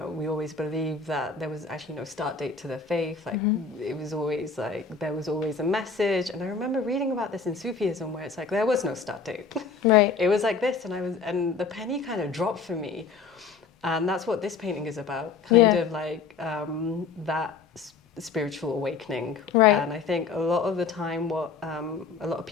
we always believed that there was actually no start date to the faith. Like it was always like, there was always a message. And I remember reading about this in Sufism, where it's like, there was no start date. Right. It was like this, and the penny kind of dropped for me. And that's what this painting is about, kind of like that spiritual awakening. Right. And I think a lot of the time what a lot of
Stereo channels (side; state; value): right; quieter; 5.2 dB